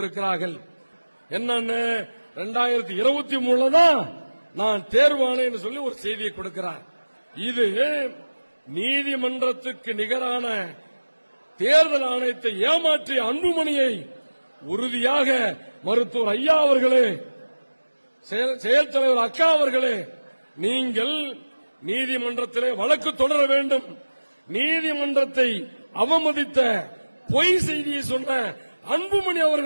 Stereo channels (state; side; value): inverted; both; correlation -1.00